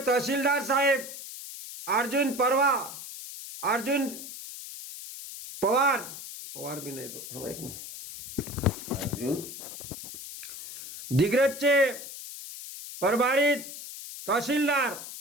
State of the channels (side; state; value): left; noise; hiss, 11 dB below the sound